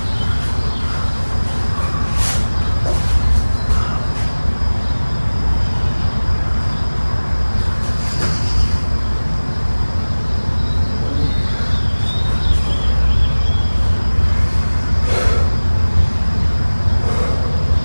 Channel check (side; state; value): both; inverted; correlation -1.00